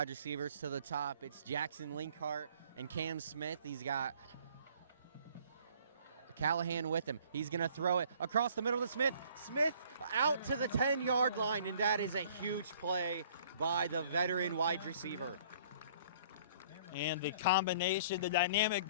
receivers to the top. It's Jackson Linkhart and Cam Smith. He's got Callahan with him. He's going to throw it across the middle to Smith. Smith out to the 10-yard line, and that is a huge play by the veteran wide receiver. And the combination, the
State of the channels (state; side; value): inverted; both; correlation -0.56